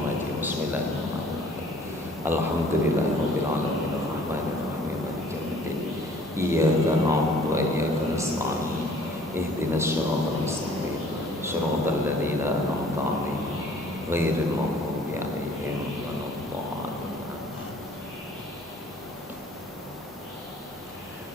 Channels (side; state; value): both; normal; correlation 0.55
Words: rajim. Bismillahirrahmanirrahim. Alhamdulillahirabbil alamin arrahmanir rahim. Iyyaka na'budu wa iyyaka nasta'in. Ihdinas siratal mustaqim. Siratal ladzina an'amta 'alaihim ghairil maghdubi 'alaihim waladdallin.